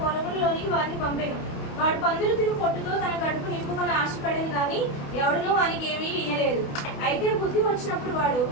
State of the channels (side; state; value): right; late; 28 ms